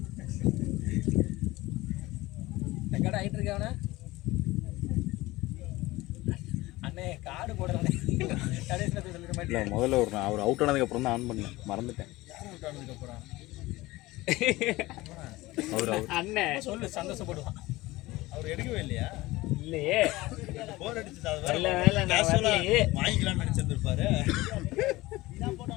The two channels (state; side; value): quieter; right; 19.5 dB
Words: கடை ஆகிட்டு இருக்கவன அண்ணே காடு போடுறேன் கடைசியில் சொல்லிட இல்லை மாட்டேன் முதல்ல ஒரு அவர் அவுட் ஆனதுக்கப்புறம் தான் ஆன் பண்ணேன் மறந்துட்டேன். அப்புறம் அவர் அண்ணன் சொல்லு சந்தோஷப்படுவான் அவர் எடுக்கவே இல்லையா இல்லையே போர் அடிச்சு நல்ல வேலை நான் வரலையே. வாங்கிக்கலாம்னு நினைச்சிருந்திருப்பாரு